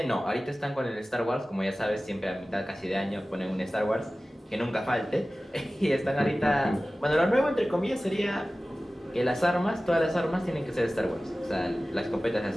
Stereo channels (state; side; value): normal; both; correlation 0.97